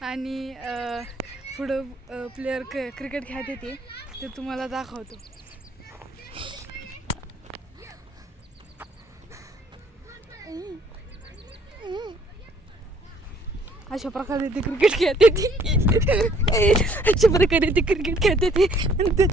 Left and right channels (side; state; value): both; normal; correlation 0.61